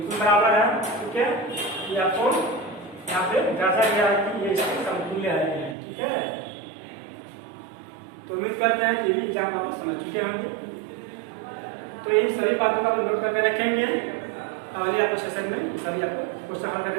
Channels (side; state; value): left; drops out; at 5.8 s